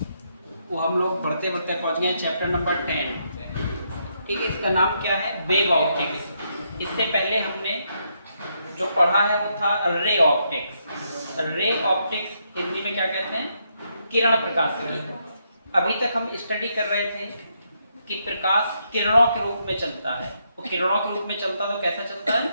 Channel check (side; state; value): both; inverted; correlation -0.78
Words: वो हम लोग बढ़ते बढ़ते पहुंच गए हैं चैप्टर नंबर 10। ठीक है, इसका नाम क्या है? Wave optics. इससे पहले हमने जो पढ़ा है वो था ray optics. Ray optics Hindi में क्या कहते हैं? किरण प्रकाश की। अभी तक हम स्टडी कर रहे थे कि प्रकाश किरणों के रूप में चलता है। वो किरणों के रूप में चलता तो कैसा चलता है?